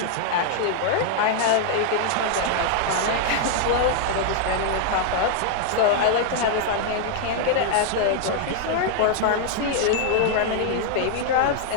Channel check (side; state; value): both; different; correlation 0.00